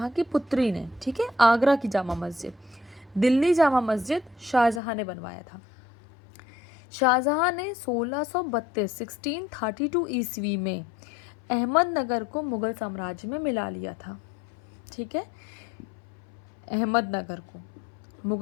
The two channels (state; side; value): drops out; right; at 4.8 s